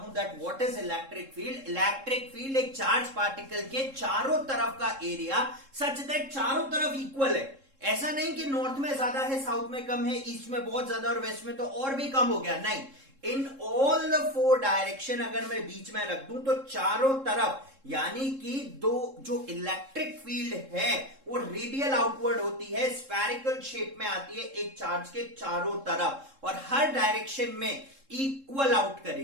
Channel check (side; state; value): left; late; 3.7 ms